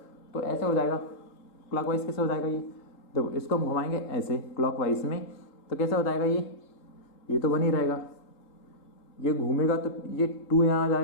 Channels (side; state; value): right; late; 3.8 ms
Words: तो ऐसे हो जाएगा। क्लॉकवाइज कैसे हो जाएगा, ये देखो इसको हम घुमाएंगे ऐसे क्लॉकवाइज में, तो कैसे हो जाएगा, ये तो बन ही रहेगा। ये घूमेगा तो ये 2 यहाँ आ